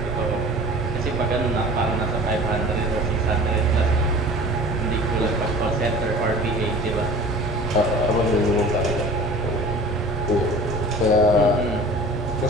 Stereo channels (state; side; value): normal; both; correlation 0.42